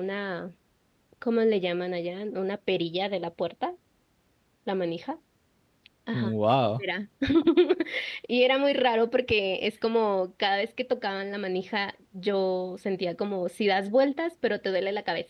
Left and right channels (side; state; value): both; identical; correlation 1.00